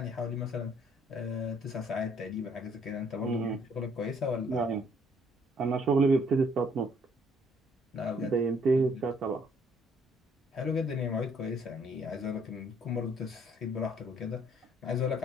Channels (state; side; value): normal; both; correlation 0.64